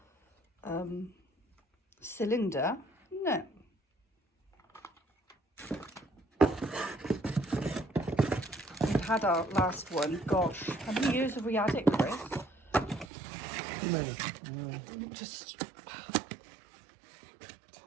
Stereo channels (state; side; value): drops out; left; at 13.1 s